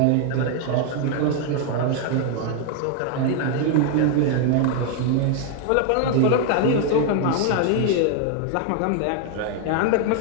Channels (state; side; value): different; both; correlation 0.00